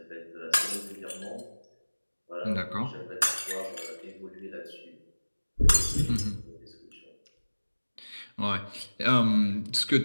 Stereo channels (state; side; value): inverted; both; correlation -1.00